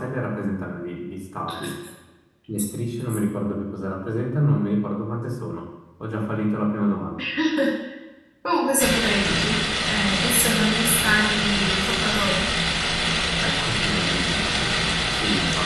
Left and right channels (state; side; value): identical; both; correlation 1.00